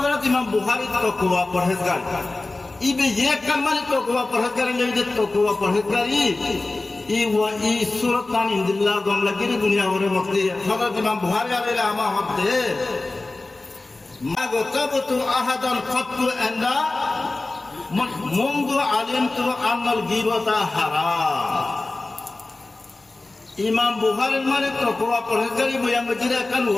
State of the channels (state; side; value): quieter; right; 3.1 dB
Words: इमाम बुखारी तकवा परहेजगार इबे ये कल माने तकवा परहेजगार लेबे तकवा परहेजगारी ई सूरत तान इंदिल्ला गमला की दुनिया भरे मक्ति हजरत इमाम बुखारी आले आमा हब्दे মা গতাবতু আহাদান কত্তু আন্না মুনযু আলিমতু আন্নাল গীবাতা হারাম। ইমাম বুখারীর মানে তকওয়া পরহেজগারি বয়ান মজিদে কান